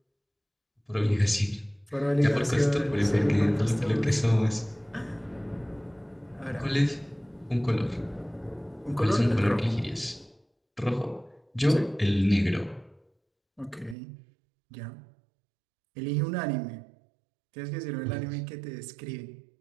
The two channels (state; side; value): drops out; left; at 14.0 s